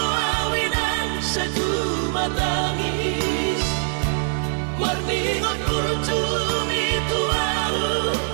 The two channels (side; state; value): left; silent; 63 dB below the other